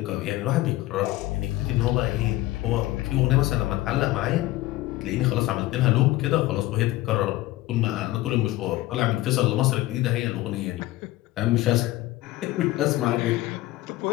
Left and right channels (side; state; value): right; quieter; 17.4 dB